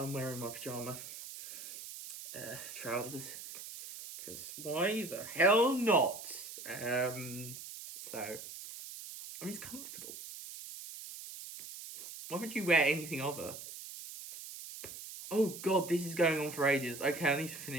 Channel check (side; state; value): right; noise; hiss, 11 dB below the sound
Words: wearing my pyjama trousers. Because why the hell not? So, I mean, it's comfortable. Why would you wear anything other? Oh god, this is going on for ages. Okay, I need to